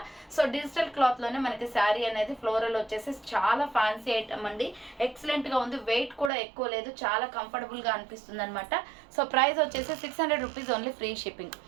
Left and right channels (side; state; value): left; drops out; at 6.3 s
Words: సో డిజిటల్ క్లాత్ లోనే మనకి శారీ అనేది ఫ్లోరల్ వచ్చేసి చాలా ఫ్యాన్సీ ఐటమ్ అండి. ఎక్సలెంట్ గా ఉంది. వెయిట్ కూడా ఎక్కువ లేదు, చాలా కంఫర్టబుల్ గా అనిపిస్తుంది అనమాట. సో ప్రైస్ వచ్చేసి 600 rupees only free shipping.